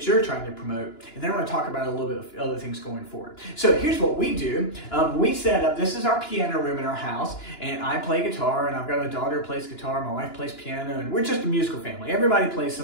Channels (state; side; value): late; right; 2.9 ms